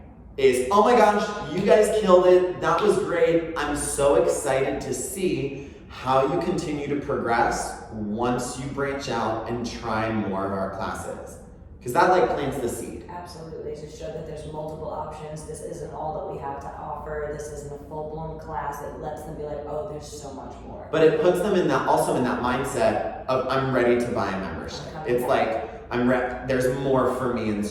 is, oh my gosh, you guys killed it. That was great. I'm so excited to see how you continue to progress once you branch out and try more of our classes. Because that plants the seed. Absolutely, to show that there's multiple options. This isn't all that we have to offer. This isn't a full-blown class. It lets them be like, oh, there's so much more. But it puts them in that mindset of, I'm ready to buy a membership. It's like, there's more for me in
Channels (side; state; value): both; identical; correlation 1.00